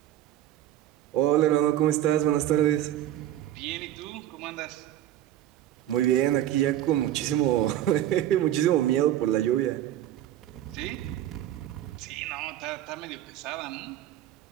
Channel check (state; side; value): quieter; left; 12.7 dB